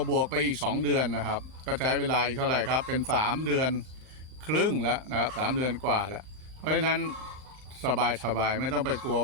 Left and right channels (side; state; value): left; late; 38 ms